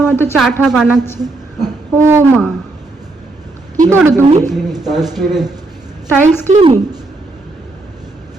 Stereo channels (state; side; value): quieter; left; 3.0 dB